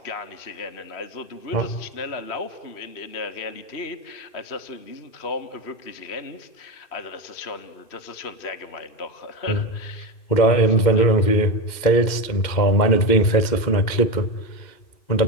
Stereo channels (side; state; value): right; late; 2.1 ms